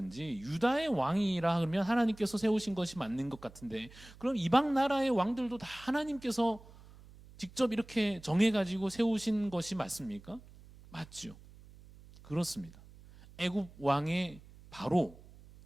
유다의 왕이라 그러면 하나님께서 세우신 것이 맞는 것 같은데, 그럼 이방 나라의 왕들도 다 하나님께서 직접 이렇게 정해가지고 세우신 것이 맞습니까? 맞죠. 그렇습니다. 애굽 왕의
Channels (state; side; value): noise; right; hum, 21 dB below the sound